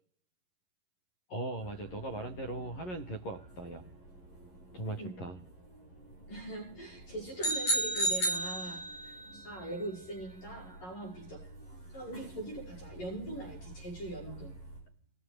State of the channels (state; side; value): late; right; 11 ms